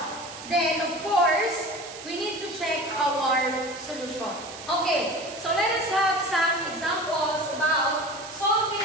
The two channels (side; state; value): right; noise; hiss, 13 dB below the sound